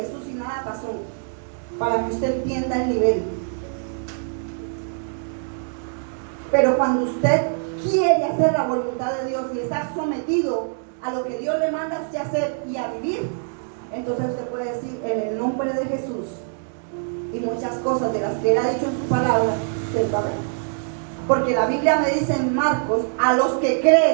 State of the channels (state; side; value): silent; left; digital silence